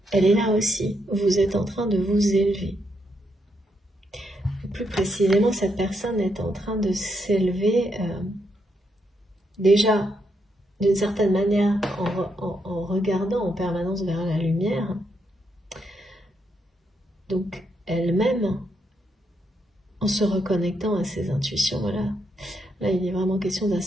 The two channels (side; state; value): both; normal; correlation 0.79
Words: Elle est là aussi. Vous êtes en train de vous élever. Plus précisément, cette personne est en train de s'élever déjà d'une certaine manière en regardant en permanence vers la lumière. Donc elle-même, en se reconnectant à ses intuitions, voilà. Là, il est vraiment question